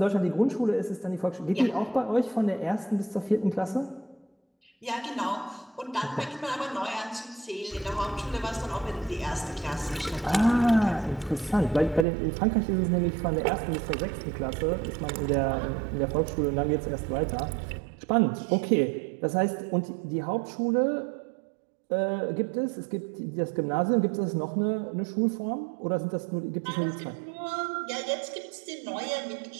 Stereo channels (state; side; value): drops out; left; at 12.1 s